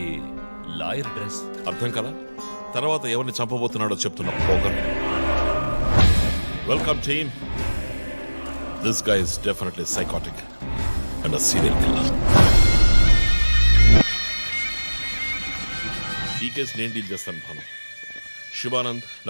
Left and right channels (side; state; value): both; inverted; correlation -1.00